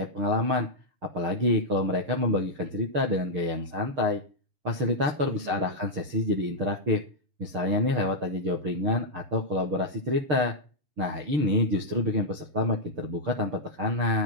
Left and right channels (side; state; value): left; late; 6.7 ms